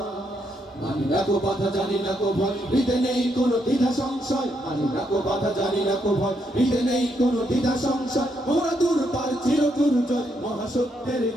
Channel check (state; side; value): normal; both; correlation 0.77